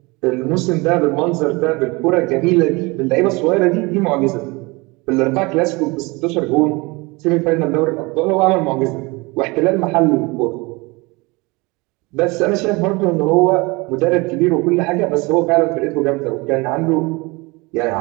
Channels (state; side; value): quieter; left; 25.2 dB